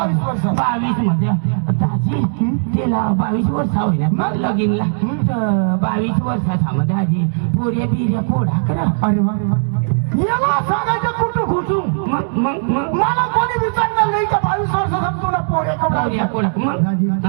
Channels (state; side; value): silent; left; digital silence